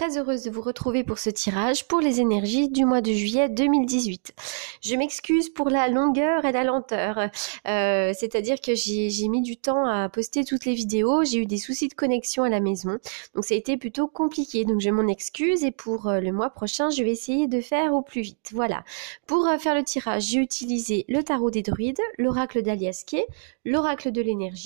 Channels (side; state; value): left; silent; digital silence